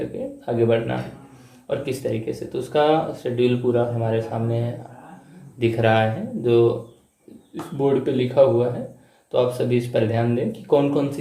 के आगे बढ़ना है और किस तरीके से। तो उसका शेड्यूल पूरा हमारे सामने दिख रहा है जो इस बोर्ड पे लिखा हुआ है। तो आप सभी इस पर ध्यान दें कि कौन कौन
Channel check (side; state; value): both; identical; correlation 1.00